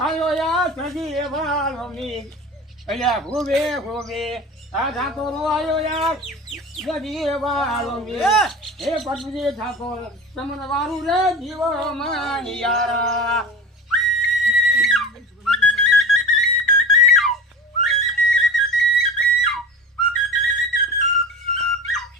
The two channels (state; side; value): normal; both; correlation 0.33